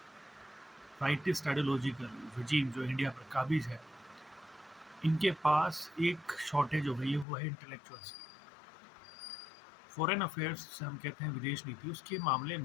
राइटिस्ट आइडियोलॉजिकल रजीम जो इंडिया पर काबिज है, इनके पास एक शॉर्टेज हो गई है, वो है इंटेलेक्चुअल्स की। फॉरेन अफेयर्स से हम कहते हैं विदेश नीति, उसके मामले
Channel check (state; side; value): drops out; right; at 7.2 s